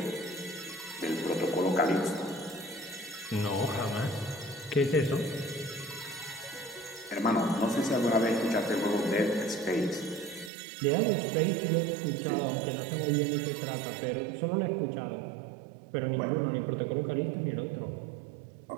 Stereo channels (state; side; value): drops out; left; at 10.5 s